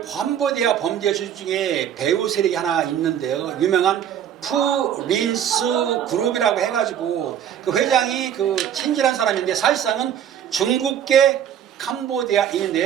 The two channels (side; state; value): left; quieter; 9.6 dB